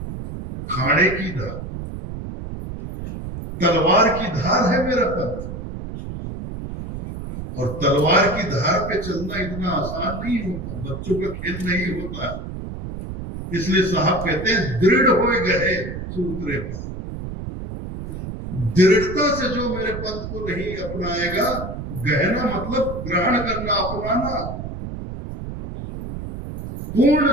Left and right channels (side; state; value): right; noise; rumble, 8 dB below the sound